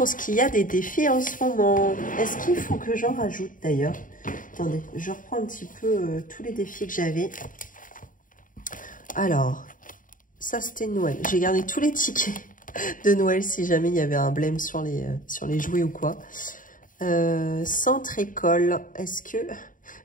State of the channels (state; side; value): late; right; 0.39 ms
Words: ce qu'il y a des défis en ce moment. Est-ce qu'il faut que j'en rajoute d'ailleurs? Attendez, je reprends un petit peu tous les défis que j'avais. Alors, ça c'était Noël. J'ai gardé tous les tickets de Noël si jamais il y avait un blême sur les jouets ou quoi. Centre école, est-ce que... Il